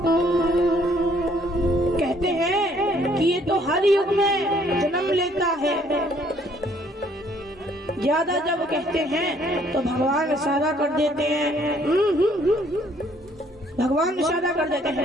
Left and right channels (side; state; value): both; normal; correlation 0.63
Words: कहते हैं कि ये तो हर युग में जन्म लेता है। ज्यादा जब कहते हैं तो भगवान इशारा कर देते हैं, भगवान इशारा कर देते